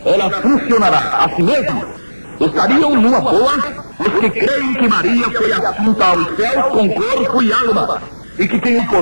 ela funcionará a si mesma. Estariam numa boa os que creem que Maria foi assunta aos céus com corpo e alma, e que tem o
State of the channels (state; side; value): inverted; both; correlation -1.00